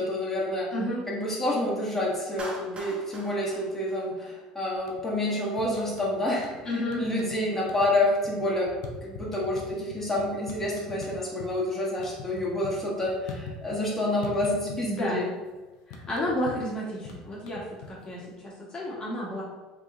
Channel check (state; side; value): normal; both; correlation 0.44